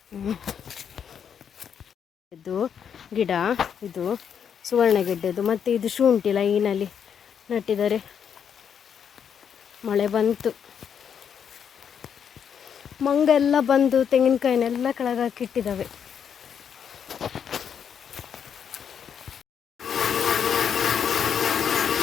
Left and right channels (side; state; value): right; quieter; 7.8 dB